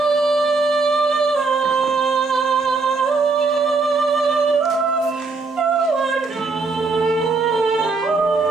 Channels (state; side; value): quieter; left; 4.0 dB